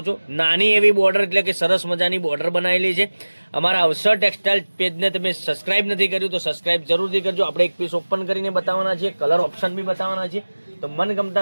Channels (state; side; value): inverted; both; correlation -1.00